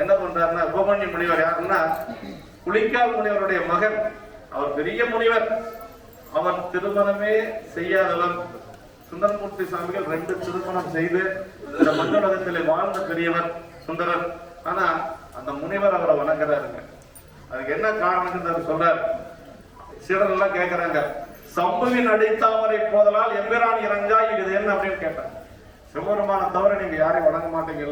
என்ன பண்றாருன்னா உபமன்ய முனிவர் யாருன்னா புலிக்கால் முனிவருடைய மகன் அவர் பெரிய முனிவர். அவர் திருமணமே செய்யாதவர். சுந்தரமூர்த்தி சுவாமிகள் 2 திருமணம் செய்து இந்த மண்ணுலகத்திலே வாழ்ந்த பெரியவர் சுந்தரர். ஆனா அந்த முனிவர் அவரை வணங்குறாருங்க. அதுக்கு என்ன காரணம் சொல்றார். சீடர் எல்லாம் கேட்கிறாங்க, சம்புவின் அடித்தாமரை போதலால் எம்பிரான் இறங்கா இது என்ன அப்படின்னு கேட்டாங்க. சிவபெருமான தவிர நீங்க யாரையும் வணங்க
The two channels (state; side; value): identical; both; correlation 1.00